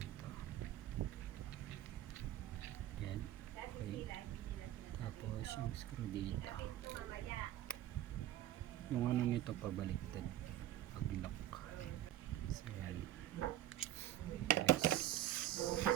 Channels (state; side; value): quieter; left; 12.9 dB